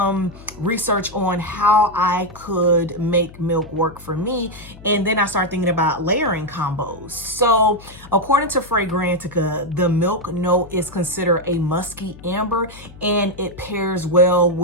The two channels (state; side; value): noise; left; hum, 19 dB below the sound